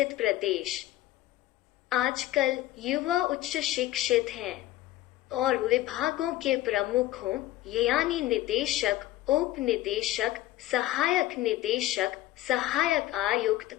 प्रदेश आजकल युवा उच्च शिक्षित हैं और विभागों के प्रमुखों यानी निदेशक, उप निदेशक, सहायक निदेशक, सहायक आयुक्त,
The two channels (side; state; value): right; quieter; 15.5 dB